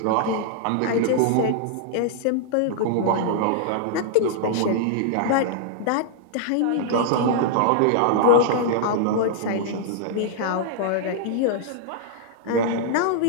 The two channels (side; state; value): both; different; correlation -0.01